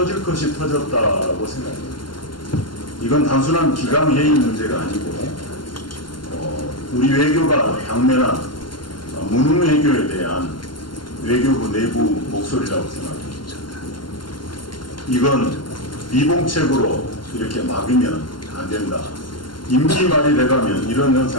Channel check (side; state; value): right; late; 0.71 ms